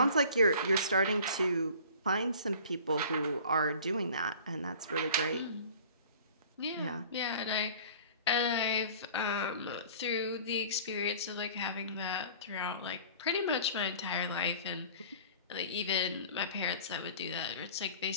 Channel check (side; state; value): both; inverted; correlation -0.45